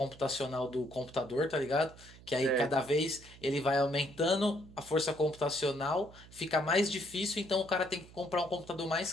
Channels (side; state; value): right; noise; hum, 20 dB below the sound